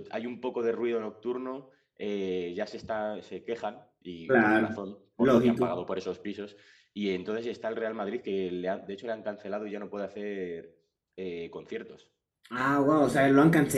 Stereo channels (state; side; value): identical; both; correlation 1.00